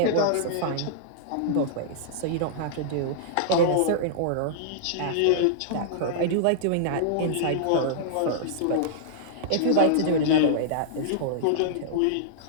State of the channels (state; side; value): different; both; correlation -0.02